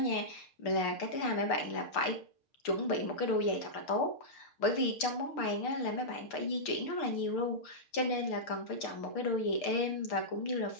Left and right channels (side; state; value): right; late; 6.6 ms